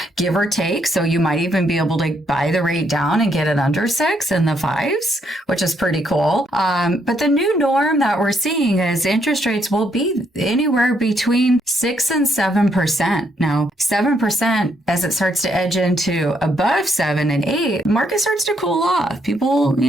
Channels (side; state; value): both; normal; correlation 0.74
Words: give or take. So you might even be able to buy the rate down and get it under 6 in the 5s, which is pretty cool. But the new norm that we're seeing is interest rates will be anywhere between 6 and 7%. Now, 7%, as it starts to edge into above 7 and 8, market starts to cool off. People,